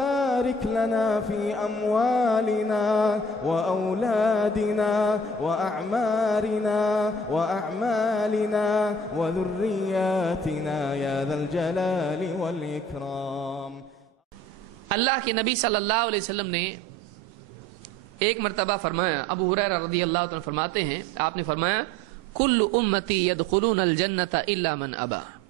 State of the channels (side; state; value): both; normal; correlation 0.48